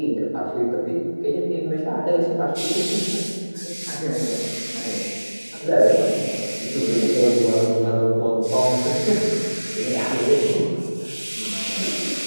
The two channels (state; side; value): inverted; both; correlation -1.00